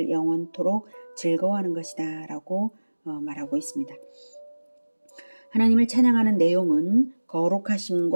영원토록 즐거워하는 것이다 라고 말하고 있습니다. 하나님을 찬양하는 내용은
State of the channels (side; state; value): both; inverted; correlation -1.00